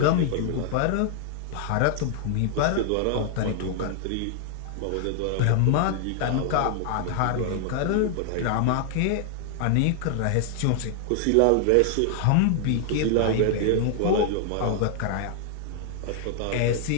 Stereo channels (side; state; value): both; different; correlation 0.00